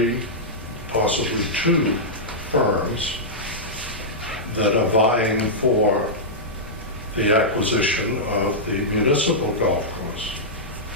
possibly 2 firms that are vying for the acquisition of the municipal golf course,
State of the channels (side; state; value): both; normal; correlation -0.11